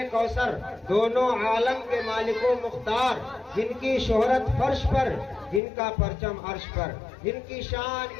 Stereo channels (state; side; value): drops out; right; at 5.6 s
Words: کوثر، دونوں عالم کے مالک و مختار، جن کی شہرت فرش پر، جن کا پرچم عرش پر، جن کی